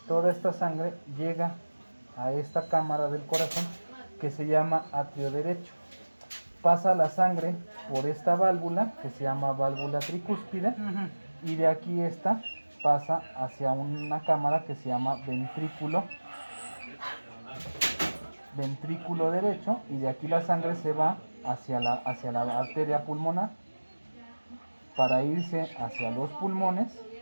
toda esta sangre llega a esta cámara del corazón que se llama atrio derecho. Pasa la sangre por esta válvula que se llama válvula tricúspide y de aquí esta pasa hacia una cámara que se llama ventrículo derecho, y de aquí la sangre se va hacia la arteria pulmonar para irse hacia los pulmones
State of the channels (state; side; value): inverted; both; correlation -1.00